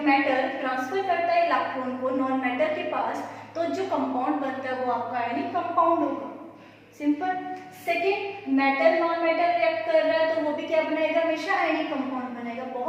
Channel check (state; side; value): identical; both; correlation 1.00